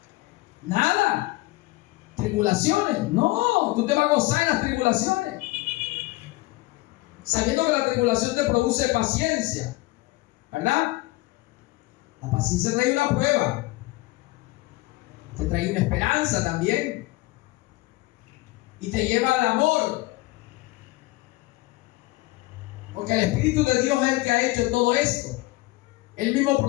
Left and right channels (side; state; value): right; quieter; 20.9 dB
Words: Nada. ¿Tribulaciones? No, tú te vas a gozar en las tribulaciones, sabiendo que la tribulación te produce paciencia, ¿verdad? La paciencia trae una prueba, te trae una esperanza también, y te lleva al amor, porque el Espíritu de Dios es el que ha hecho todo esto. Él mismo